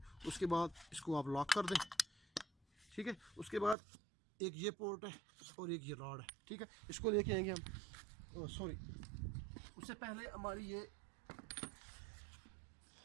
उसके बाद इसको आप लॉक कर दें। ठीक है, उसके बाद एक ये पोर्ट है और एक ये रॉड है। ठीक है, इसको लेके आएंगे हम, सॉरी उससे पहले हमारी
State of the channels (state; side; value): drops out; left; at 3.8 s